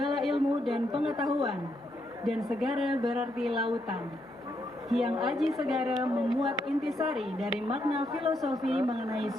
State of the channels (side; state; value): both; normal; correlation 0.77